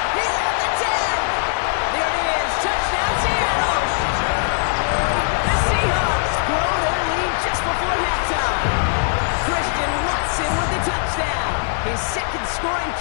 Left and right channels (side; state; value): right; silent; 59 dB below the other